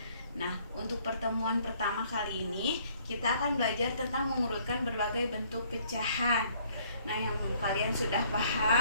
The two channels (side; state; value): both; inverted; correlation -0.62